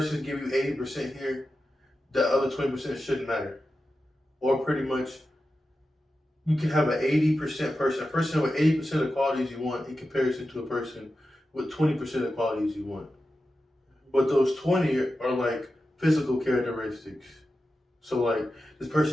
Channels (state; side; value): normal; both; correlation 0.91